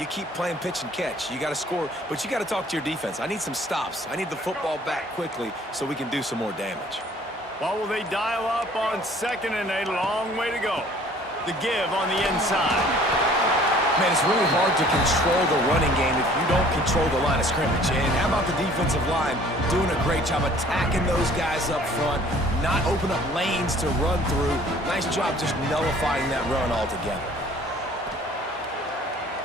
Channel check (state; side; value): normal; both; correlation 0.54